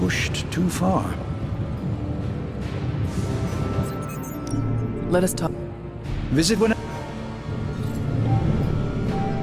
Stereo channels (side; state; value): both; identical; correlation 1.00